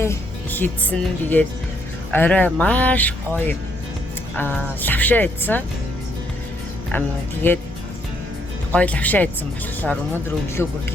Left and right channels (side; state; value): both; normal; correlation 0.72